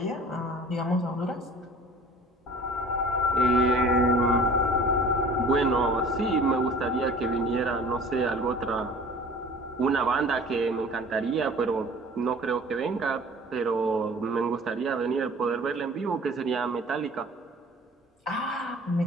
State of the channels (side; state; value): both; normal; correlation 0.46